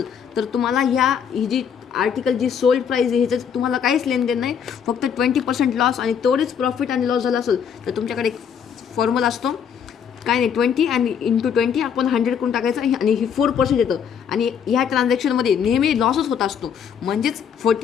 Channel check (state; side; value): quieter; right; 7.7 dB